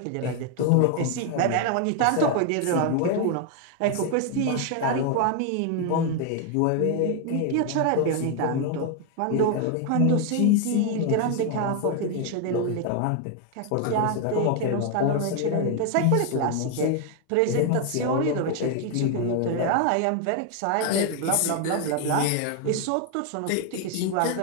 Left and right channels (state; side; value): different; both; correlation 0.01